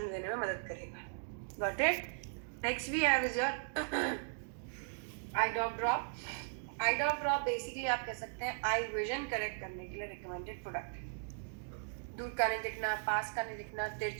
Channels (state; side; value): silent; left; digital silence